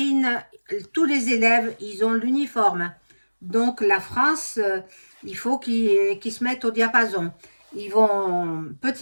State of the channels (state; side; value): inverted; both; correlation -1.00